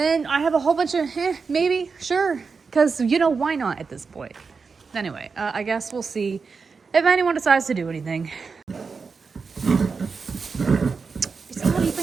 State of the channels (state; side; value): quieter; left; 5.0 dB